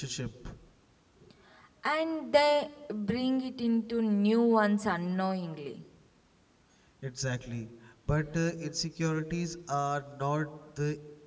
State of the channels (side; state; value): both; identical; correlation 1.00